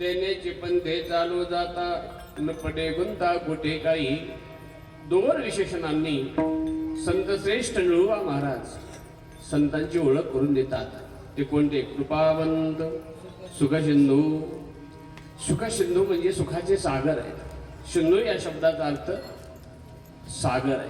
पंथे चालू जाता न पडे गुंता कुठे काही दोर विशेषणांनी संत श्रेष्ठ निळुवा महाराज संतांची ओळख करून देतात. ते कोणते? कृपावंत, सुखसिंधू. सुखसिंधू म्हणजे सुखाचे सागर आहेत. सिंधू या शब्दाचा अर्थ सागर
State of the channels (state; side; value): identical; both; correlation 1.00